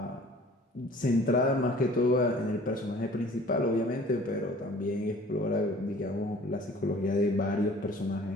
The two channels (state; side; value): normal; both; correlation 0.50